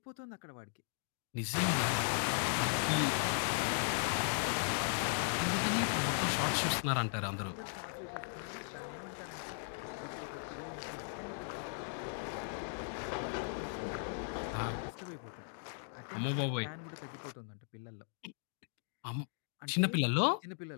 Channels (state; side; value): silent; right; digital silence